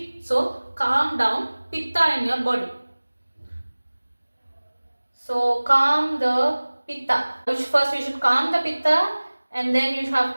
So calm down pitta in your body. So calm the pitta. First we should calm the pitta and then you have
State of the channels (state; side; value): inverted; both; correlation -1.00